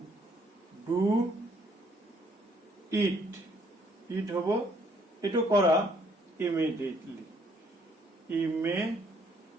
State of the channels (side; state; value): both; normal; correlation 0.65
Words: ডু ইট, ইট হব এটো কৰা immediately, immediately,